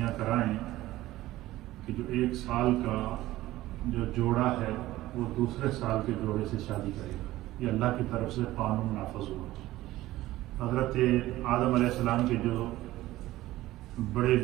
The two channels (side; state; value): left; quieter; 16.3 dB